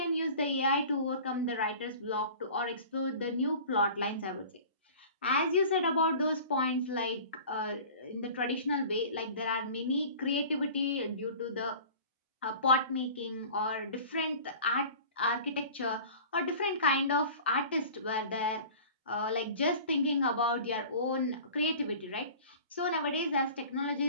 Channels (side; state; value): both; inverted; correlation -0.42